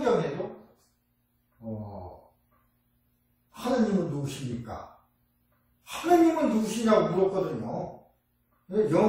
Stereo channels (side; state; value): both; identical; correlation 1.00